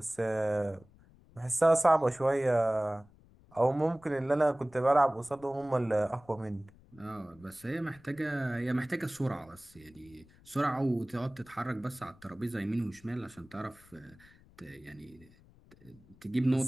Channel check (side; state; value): left; noise; rumble, 26 dB below the sound